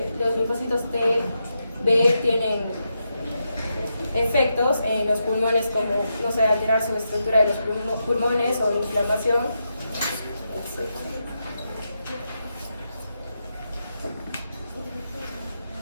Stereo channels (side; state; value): both; inverted; correlation -0.85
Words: los linfocitos T, B tienen efectos en los pulmones, como, no sé, alterar su estructura de los pulmones o inflamación, etc.